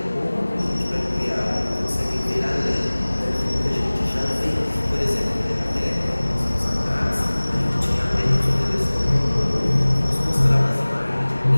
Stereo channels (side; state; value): both; inverted; correlation -1.00